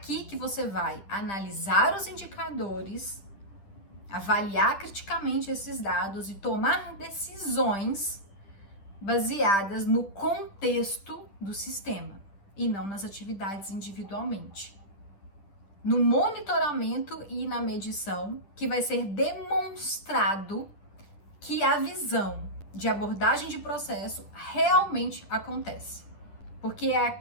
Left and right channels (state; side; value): late; right; 10 ms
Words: que você vai analisar os indicadores, avaliar criticamente esses dados e tomar decisões baseadas no contexto do sistema e não nas atividades individualmente. No monitoramento e na medição, que vai ser demonstrado que a visão de abordagem de processo realmente acontece. Porque é